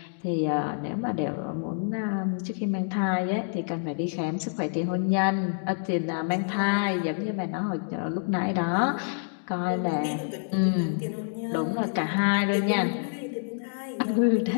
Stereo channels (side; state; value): right; silent; digital silence